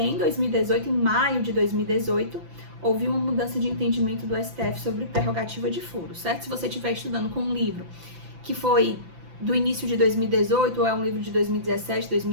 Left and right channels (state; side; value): late; left; 5.9 ms